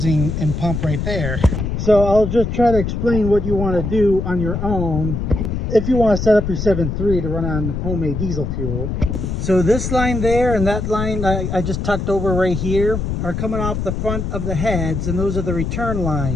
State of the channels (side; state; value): left; noise; rumble, 3 dB below the sound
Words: and pump right there. So I'll just try to explain what you want to do on your own if you want to set up your 7.3 to run on homemade diesel fuel. So this line there and that line I just tucked over right here are coming off the front of the heads, and those are the return